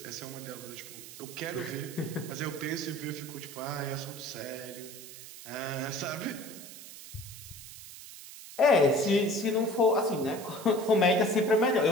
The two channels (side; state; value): right; noise; hiss, 14 dB below the sound